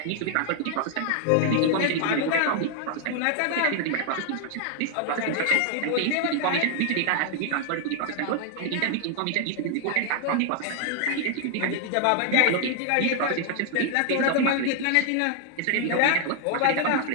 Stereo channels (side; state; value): both; different; correlation 0.00